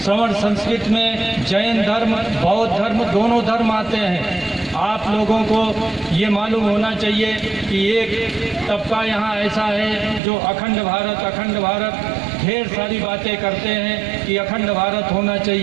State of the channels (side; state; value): left; drops out; at 10.2 s